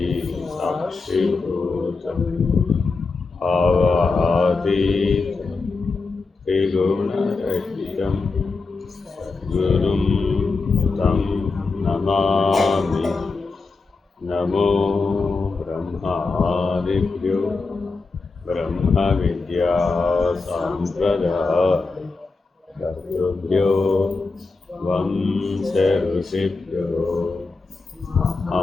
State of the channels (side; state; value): right; quieter; 4.1 dB